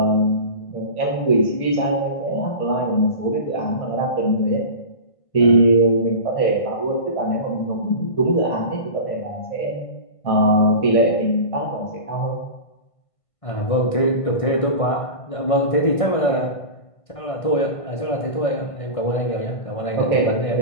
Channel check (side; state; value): right; late; 1.6 ms